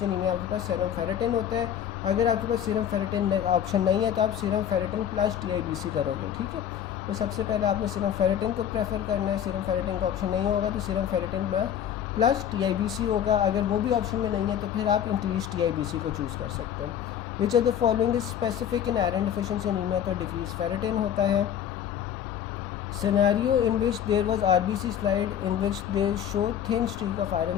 anaemia आपके पास सीरम फेरेटिन होता है। अगर आपके पास सीरम फेरेटिन ऑप्शन नहीं है तो आप सीरम फेरेटिन प्लस TIBC करोगे, ठीक है। तो सबसे पहले आपने सीरम फेरेटिन को प्रेफर करना है। सीरम फेरेटिन का ऑप्शन नहीं होगा तो सीरम फेरेटिन प्लस TIBC होगा। अगर वो भी ऑप्शन में नहीं है तो फिर आप इंक्रीज TIBC को चूज़ कर सकते हैं। Which are the following is specific in iron deficiency anaemia, तो डिक्रीज फेरेटिन होता है। Scenario in which there was RBC slide in which they show thin streak of iron,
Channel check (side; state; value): right; quieter; 9.5 dB